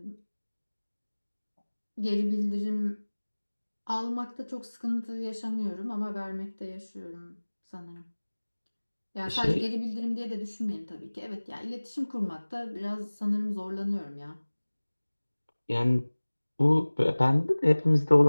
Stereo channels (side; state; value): both; inverted; correlation -1.00